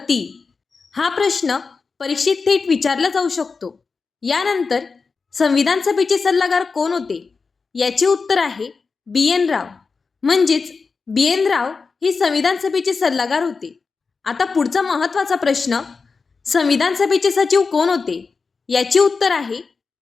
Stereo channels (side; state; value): right; quieter; 4.7 dB